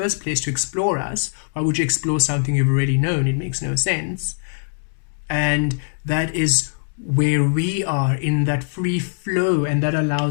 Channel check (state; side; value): silent; right; digital silence